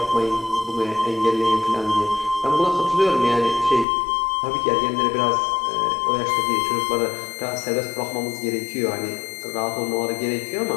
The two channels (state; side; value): drops out; right; at 3.9 s